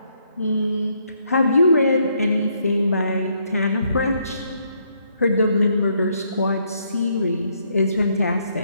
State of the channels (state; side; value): inverted; both; correlation -0.73